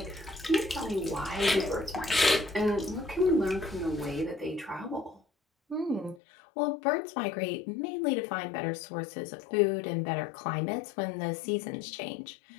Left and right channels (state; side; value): drops out; right; at 6.2 s